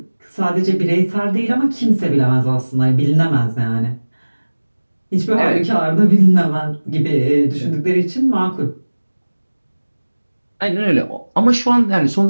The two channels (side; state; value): both; inverted; correlation -1.00